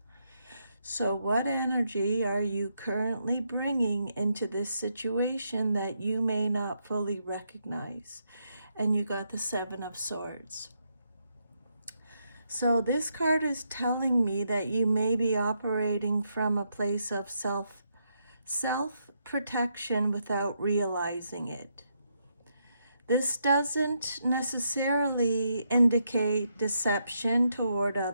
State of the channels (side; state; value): both; inverted; correlation -0.79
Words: So what energy are you currently bringing into this situation that you may not fully recognize? And you got the Seven of Swords. So this card is telling me that you may be operating from a place of self-protection without realizing it. This doesn't necessarily indicate deception toward